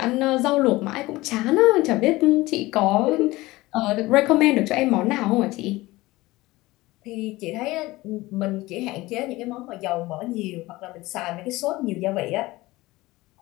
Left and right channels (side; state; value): right; quieter; 19.6 dB